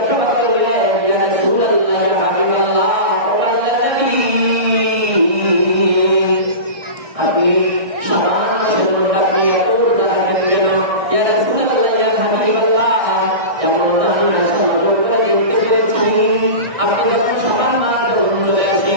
করলেন, ইয়া রাসূলুল্লাহ, ইয়া হাবিবাল্লাহ, ও আল্লাহর নবী, আপনি শাবান মাসের মধ্যে আপনি এত রোজা রাখেন কেন? ইয়া রাসূলুল্লাহ, ইয়া হাবিবাল্লাহ, যেমন আমি আয়েশা নজর করে দেখতে পেরেছি, আপনি যখন শাবান মাস যখন চলে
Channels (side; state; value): left; late; 1.6 ms